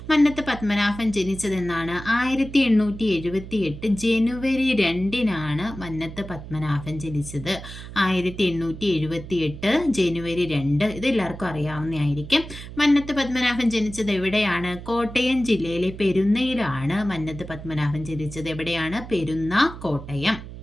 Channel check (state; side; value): noise; right; hum, 12 dB below the sound